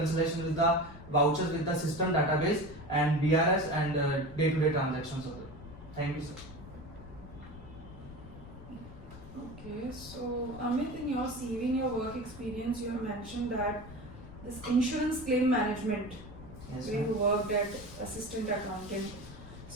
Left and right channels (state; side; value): noise; left; rumble, 15 dB below the sound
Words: with the vouchers with the system database and BRS and day-to-day transactions of it. Thank you, sir. Okay, so Amit, in your CV, in your work experience, you have mentioned that this insurance claim management, Yes, where you ma'am. worked at assistant accountant.